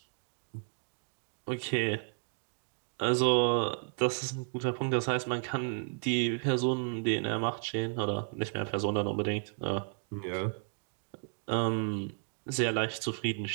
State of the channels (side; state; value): left; silent; 56 dB below the other